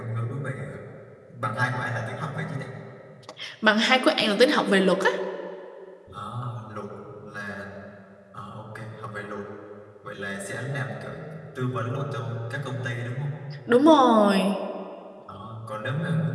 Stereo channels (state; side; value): identical; both; correlation 1.00